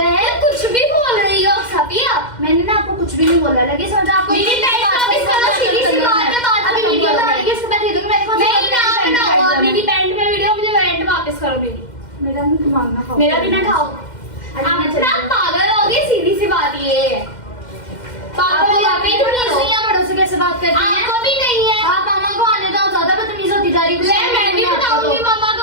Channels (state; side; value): late; right; 2.1 ms